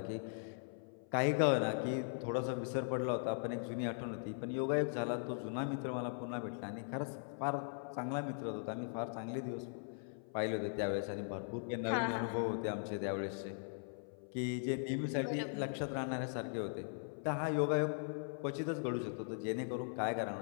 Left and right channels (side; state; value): right; silent; 51 dB below the other